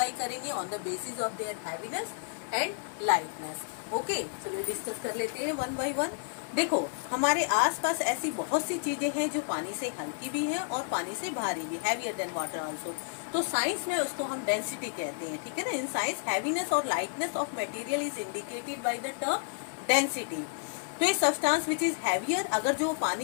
करेंगे on the basis of there heaviness and lightness. Okay, चलिए डिस्कस कर लेते हैं वन बाय वन। देखो, हमारे आसपास ऐसी बहुत सी चीजें हैं जो पानी से हल्की भी हैं और पानी से भारी भी, हैवियर देन वाटर आल्सो। तो साइंस में उसको हम डेंसिटी कहते हैं। ठीक है ना, इन साइंस हैवीनेस और lightness of material is indicated by the term density. तो ये सब्सटेंस विच इज हैवियर, अगर जो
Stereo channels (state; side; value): silent; right; digital silence